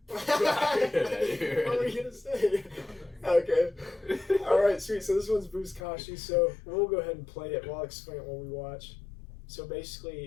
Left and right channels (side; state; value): right; drops out; at 5.8 s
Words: What were you gonna say? Okay. All right, sweet. So this one's Buzkashi. So we'll go ahead and play it. We'll explain it while we watch. So